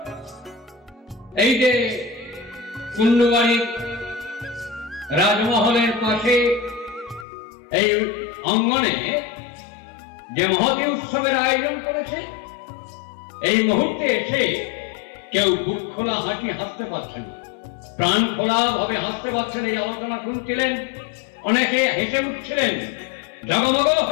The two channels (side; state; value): right; drops out; at 7.2 s